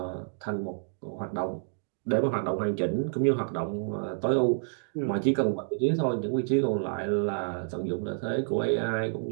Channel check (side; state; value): left; silent; digital silence